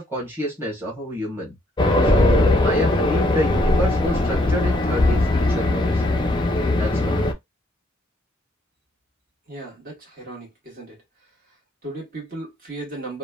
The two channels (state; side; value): normal; both; correlation 0.71